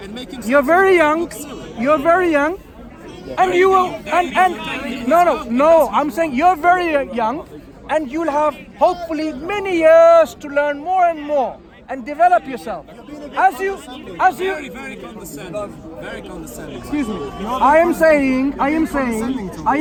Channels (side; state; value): both; identical; correlation 1.00